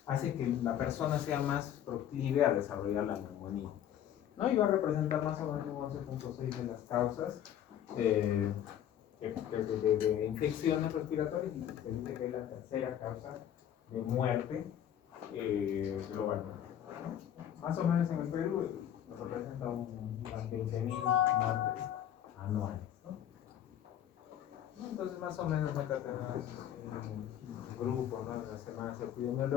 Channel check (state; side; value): quieter; right; 10.5 dB